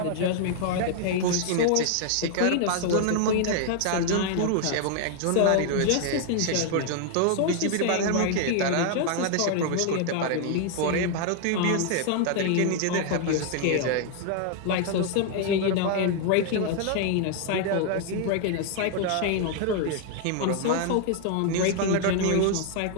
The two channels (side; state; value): both; different; correlation 0.00